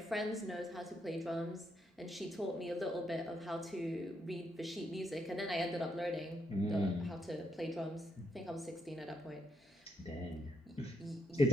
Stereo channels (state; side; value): normal; both; correlation 0.77